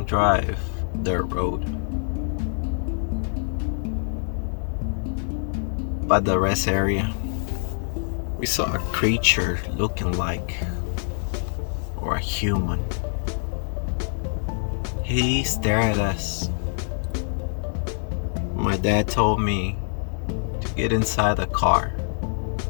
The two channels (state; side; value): silent; right; 58 dB below the other